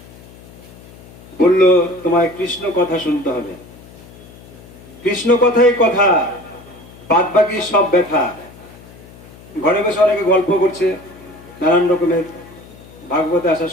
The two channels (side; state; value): left; noise; hum, 21 dB below the sound